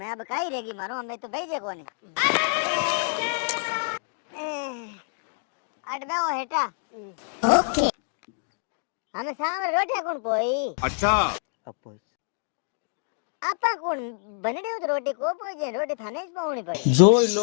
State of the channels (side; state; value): right; silent; digital silence